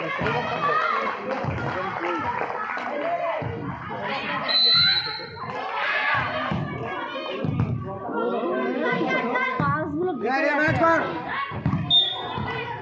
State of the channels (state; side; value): identical; both; correlation 1.00